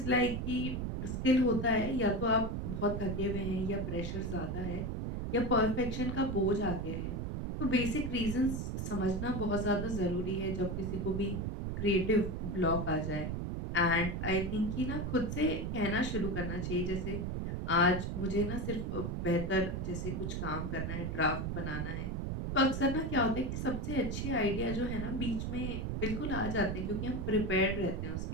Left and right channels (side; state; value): right; noise; rumble, 2 dB below the sound